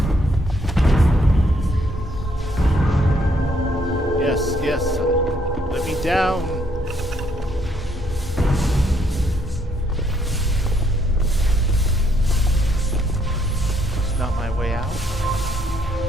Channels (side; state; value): both; normal; correlation 0.70